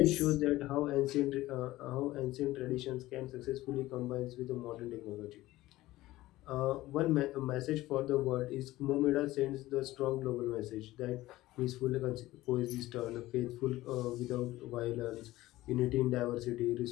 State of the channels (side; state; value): right; quieter; 17.1 dB